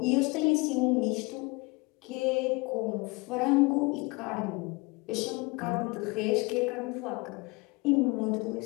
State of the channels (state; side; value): quieter; right; 26.2 dB